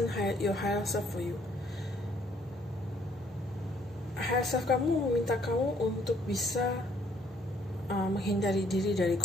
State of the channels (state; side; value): normal; both; correlation 0.65